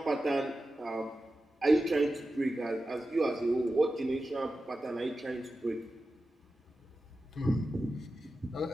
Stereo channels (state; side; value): normal; both; correlation 0.92